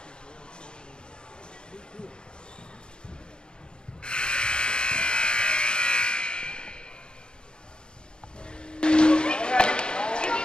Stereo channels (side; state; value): right; late; 0.050 ms